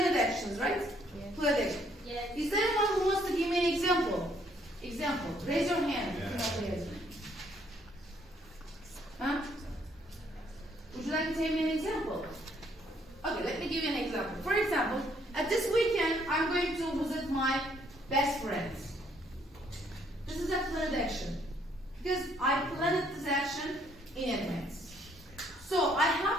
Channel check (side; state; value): both; normal; correlation 0.67